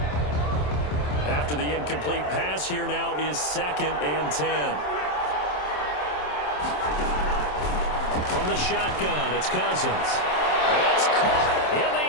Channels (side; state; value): right; late; 27 ms